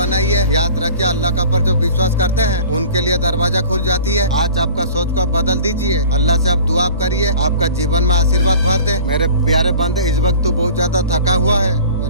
याद रखिए, अल्लाह का पर जो विश्वास करते हैं उनके लिए दरवाजा खुल जाती है। आज आपका सोच को बदल दीजिए, अल्लाह से आप दुआ करिए, आपका जीवन में आशीर्वाद भर दे। मेरे प्यारे बंदे, इस वक्त तू बहुत ज्यादा थका हुआ है,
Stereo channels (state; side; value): inverted; both; correlation -0.44